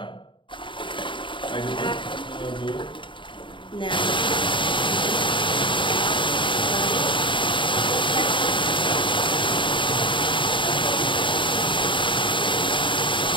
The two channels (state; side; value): late; right; 0.24 ms